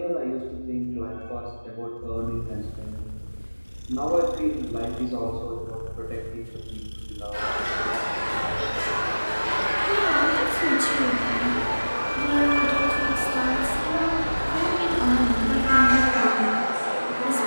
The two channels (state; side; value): inverted; both; correlation -1.00